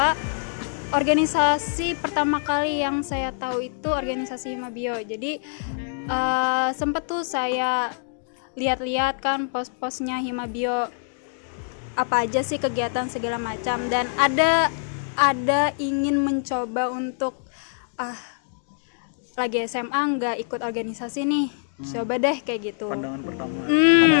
organisasi pertama kali yang saya tahu itu organisasi Himabio. Jadi sempet tuh saya lihat-lihat kan post-postnya Himabio, apa aja sih kegiatan segala macam, dan ada ingin mencoba untuk lagi SMA nggak ikut organisasi nih, coba deh kayak gitu. Pandangan pertama.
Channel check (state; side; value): silent; right; digital silence